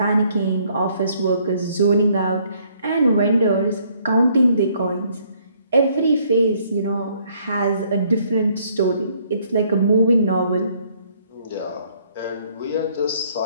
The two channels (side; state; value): both; inverted; correlation -0.66